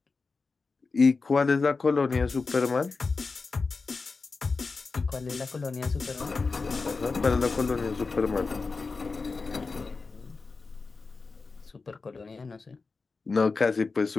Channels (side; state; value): right; quieter; 4.2 dB